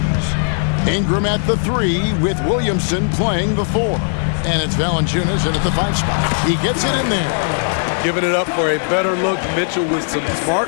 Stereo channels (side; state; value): right; silent; digital silence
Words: Ingram at the 3 with Williamson playing the 4. And it's Valanciunas in at the 5 spot. He gets it in there. Giving it up for a better look, Mitchell with some